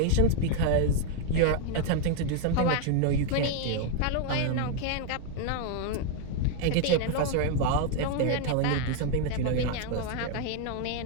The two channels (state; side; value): different; both; correlation 0.01